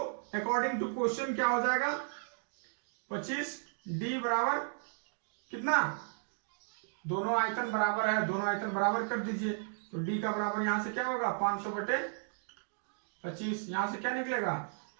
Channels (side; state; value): left; silent; digital silence